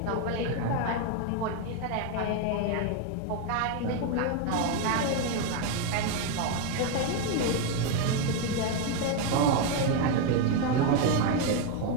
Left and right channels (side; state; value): both; different; correlation 0.02